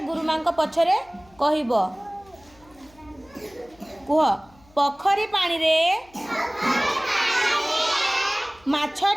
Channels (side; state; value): left; noise; hum, 28 dB below the sound